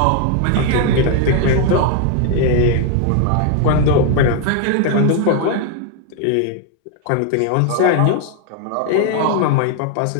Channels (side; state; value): both; different; correlation 0.00